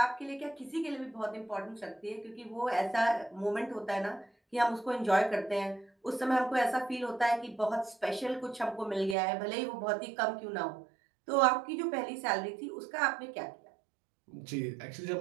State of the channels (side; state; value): left; drops out; at 9.2 s